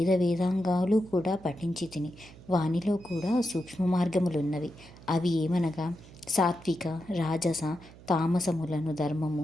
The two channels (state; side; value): noise; right; hum, 20 dB below the sound